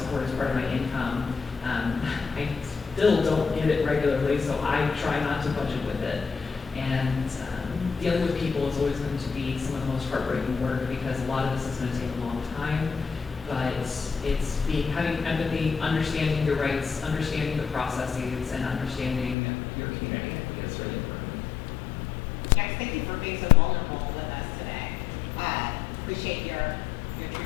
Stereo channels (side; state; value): right; drops out; at 19.4 s